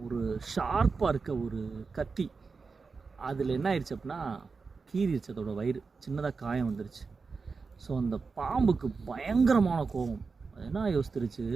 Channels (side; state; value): left; quieter; 4.7 dB